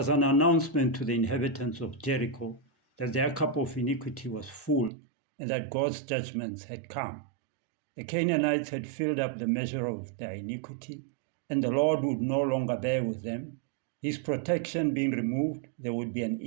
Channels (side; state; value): left; drops out; at 4.9 s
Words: an announcement to the inhabitants of Jericho that their cup of iniquity was full and that God's judgments had come. The Canaanites had filled up the measure of their iniquity, and the Lord would no longer bear with them. His protection being removed, there would be an